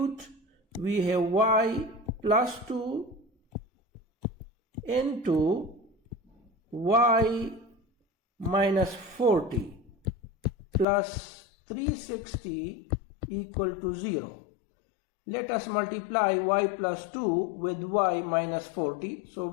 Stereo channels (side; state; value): right; drops out; at 10.9 s